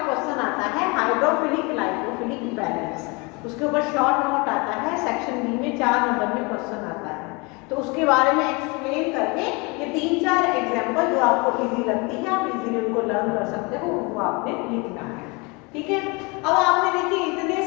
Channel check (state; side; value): quieter; right; 28.3 dB